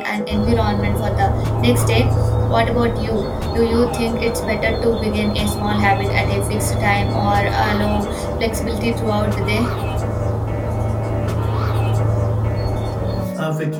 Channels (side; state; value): both; identical; correlation 1.00